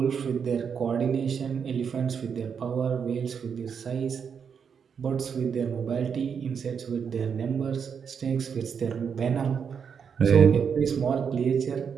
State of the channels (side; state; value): left; quieter; 6.8 dB